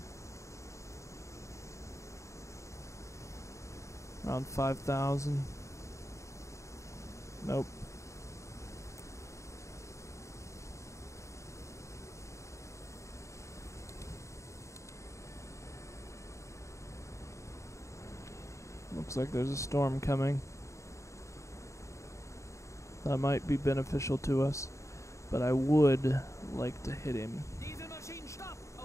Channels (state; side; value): late; right; 0.14 ms